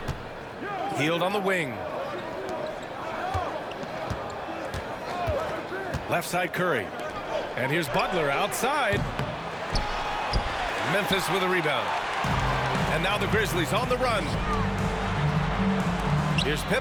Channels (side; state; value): both; identical; correlation 1.00